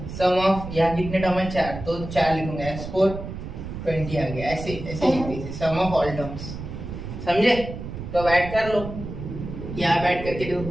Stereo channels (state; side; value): noise; right; rumble, 9 dB below the sound